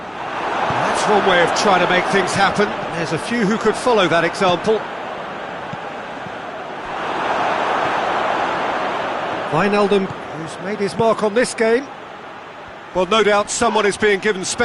That's one way of trying to make things happen. There's a few who could follow that example. Wijnaldum, who's made his mark on this game. Well, no doubt someone is being given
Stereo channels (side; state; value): both; identical; correlation 1.00